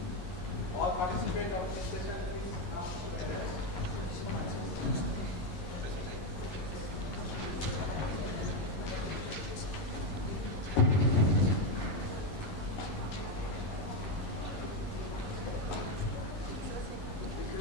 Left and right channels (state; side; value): late; right; 11 ms